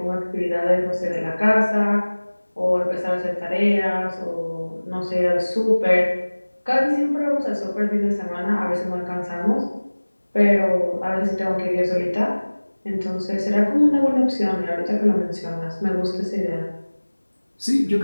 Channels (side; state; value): both; inverted; correlation -1.00